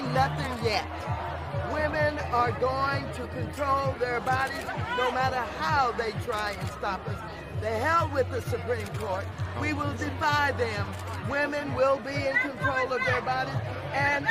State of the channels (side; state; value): both; identical; correlation 1.00